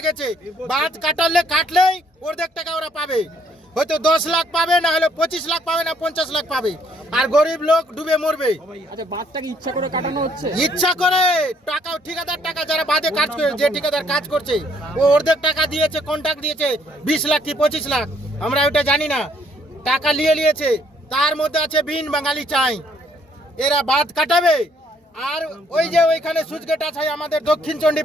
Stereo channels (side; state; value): both; normal; correlation 0.66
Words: গেছে। বাঁধ কাটলেই অর্ধেক টাকা ওরা পাবে, হয়তো 10 লাখ পাবে, না হলে 25 লাখ পাবে, না 50 লাখ পাবে। আর গরিব লোক ডুবে মরবে। আচ্ছা, বাঁধটাকে ইচ্ছা করে কাটানো হচ্ছে? ইচ্ছা করে টাকা, ঠিকাদার টাকা, যারা বাঁধে কাজ করে, যে ঠিকাদার কাজ করছে ও অর্ধেক টাকা দিয়েছে, কন্ট্রাক্ট দিয়েছে 20 লাখ কি 25 লাখ, আমরা ওটা জানি না। টাকা নিয়েছে, তার মধ্যে আছে বিন বাঙালি চাই, এরা বাঁধ কাটাবে। আর ওই যে ওইখানে সুইচ গেট আছে আমাদের দক্ষিণ